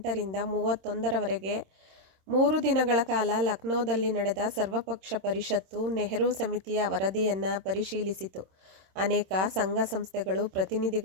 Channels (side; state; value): left; late; 26 ms